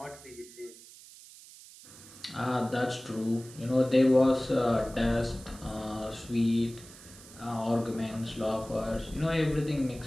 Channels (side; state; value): right; noise; hiss, 19 dB below the sound